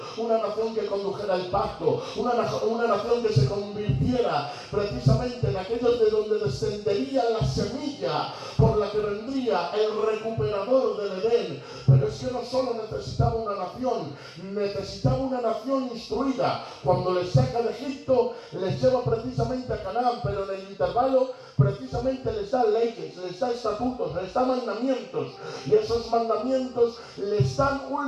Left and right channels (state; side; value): identical; both; correlation 1.00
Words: una nación que condujera el pacto, una nación que se convirtiera precisamente en aquellos de donde descendería la semilla por la que vendría el recuperador del Edén. Pero es que no solo necesitaba una nación, necesitaba una nación instruida. Cuando les saca de Egipto, les lleva precisamente a Canaán, pero en el intervalo precisamente les da leyes, les da estatutos, les da mandamientos, y esos mandamientos les dan